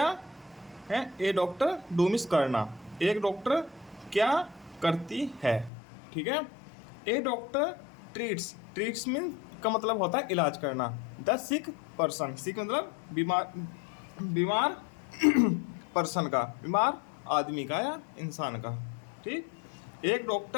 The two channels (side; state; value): right; drops out; at 5.7 s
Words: है, ए डॉक्टर डू मीन्स करना, एक डॉक्टर क्या करती है। ठीक है, ए डॉक्टर ट्रीट्स, ट्रीट्स मीन का मतलब होता है इलाज करना। द सिक पर्सन, सिक मतलब बीमार, बीमार पर्सन का, बीमार आदमी का या इंसान का। ठीक, एक